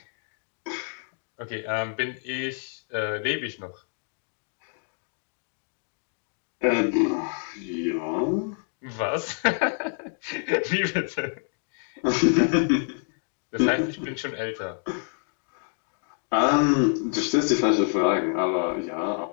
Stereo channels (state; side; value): silent; right; 58 dB below the other